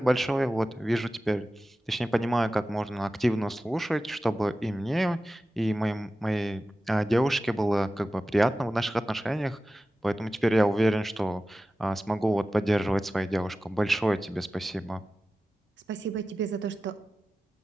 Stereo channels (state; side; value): normal; both; correlation 0.95